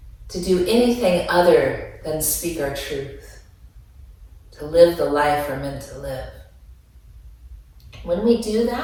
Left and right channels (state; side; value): identical; both; correlation 1.00